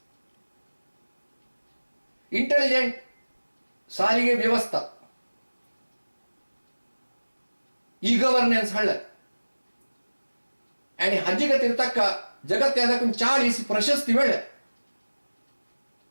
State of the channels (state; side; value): inverted; both; correlation -1.00